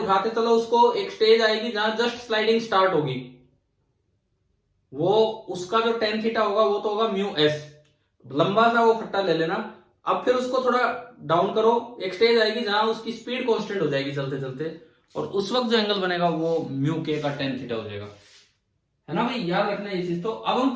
चलो उसको, एक स्टेज आएगी जहां जस्ट स्लाइडिंग स्टार्ट होगी, वो उसका जो टेन थीटा होगा वो तो होगा म्यू एस। लंबा सा वो फट्टा ले लेना। अब फिर उसको थोड़ा डाउन करो, एक स्टेज आएगी जहां उसकी स्पीड कांस्टेंट हो जाएगी चलते चलते, और उस वक्त जो एंगल बनेगा वो म्यू के का टेन थीटा हो जाएगा, है ना भाई? याद रखना ये चीज। तो अब हम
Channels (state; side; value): identical; both; correlation 1.00